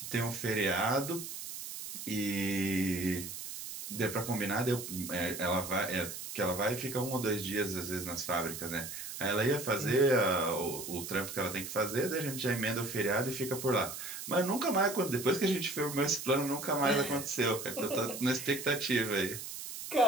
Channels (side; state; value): right; noise; hiss, 8 dB below the sound